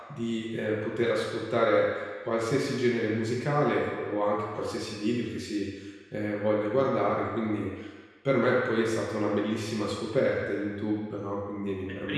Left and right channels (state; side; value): identical; both; correlation 1.00